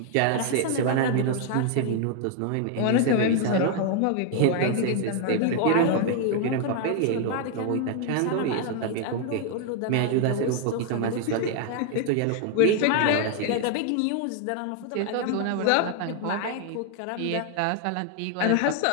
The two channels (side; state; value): both; different; correlation 0.00